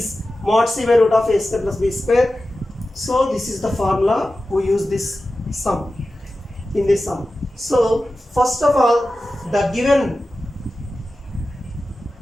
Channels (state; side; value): normal; both; correlation 0.94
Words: mod c by root of a square plus b square. So this is the formula we use this sum in this sum. So first of all, the given